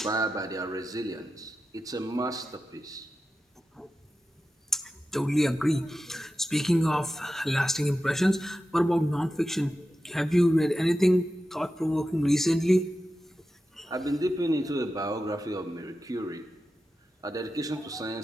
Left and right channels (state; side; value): normal; both; correlation 0.92